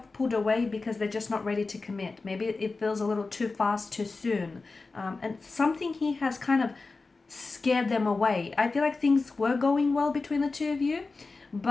pulled away because they're just not ready to commit. Maybe it feels a little too fast, too soon. And something here has kind of scared them away. I feel like things were going well between the two of you,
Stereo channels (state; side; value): quieter; right; 3.8 dB